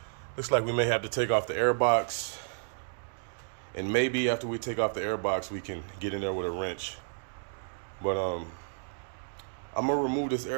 looks like we may have to take off the air box. And maybe after we take off the air box, we can get in there with a wrench. But I'm gonna remove this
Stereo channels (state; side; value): silent; left; digital silence